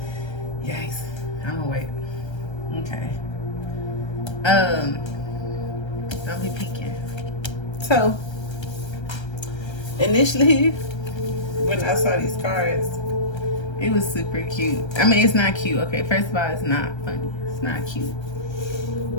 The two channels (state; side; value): late; right; 1.3 ms